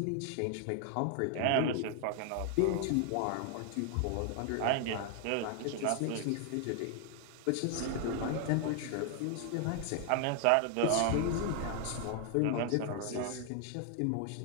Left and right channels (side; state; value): both; different; correlation 0.00